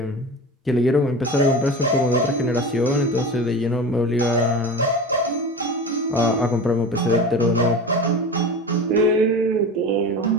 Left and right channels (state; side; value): normal; both; correlation 0.31